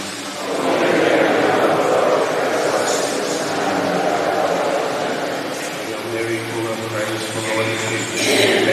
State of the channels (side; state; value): both; identical; correlation 1.00